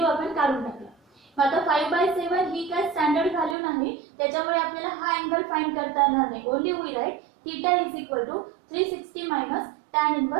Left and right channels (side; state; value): left; drops out; at 3.6 s